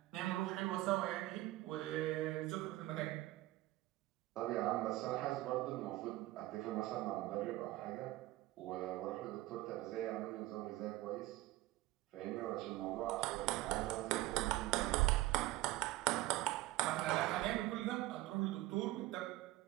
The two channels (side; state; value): left; quieter; 17.7 dB